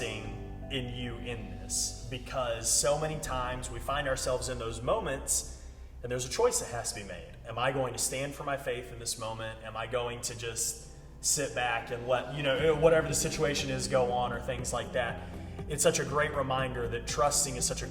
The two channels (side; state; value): both; identical; correlation 1.00